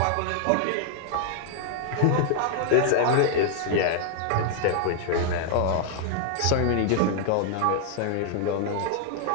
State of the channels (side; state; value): both; different; correlation -0.01